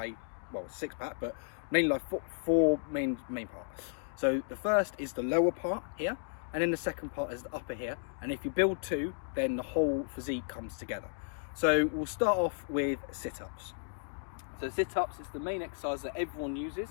well, six-pack, but mainly like four main parts. So the first is the lower part here, and then the second part is the upper here. And if you build two, then the whole physique comes together. So we'll start off with sit-ups. So sit-ups is the main exercise that everyone uses,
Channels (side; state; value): right; silent; digital silence